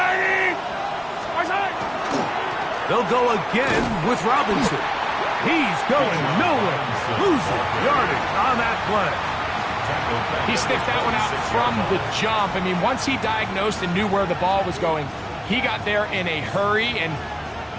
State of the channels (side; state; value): both; identical; correlation 1.00